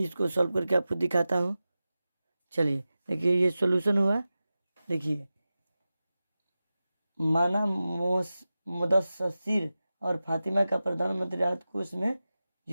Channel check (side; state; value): both; inverted; correlation -0.94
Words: इसको सॉल्व करके आपको दिखाता हूँ। चलिए देखिए ये सॉल्यूशन हुआ। देखिए माना मुदस्सिर और फातिमा का प्रधानमंत्री राहत कोष में